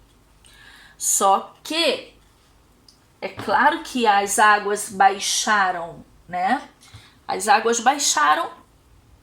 Só que é claro que as águas baixaram, né? As águas baixaram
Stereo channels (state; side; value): identical; both; correlation 1.00